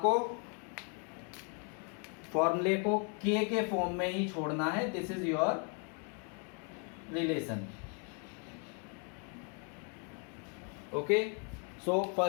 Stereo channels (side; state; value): right; quieter; 38.4 dB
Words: फॉर्मूले को k के form में ही छोड़ना है. This is your relation. Okay, so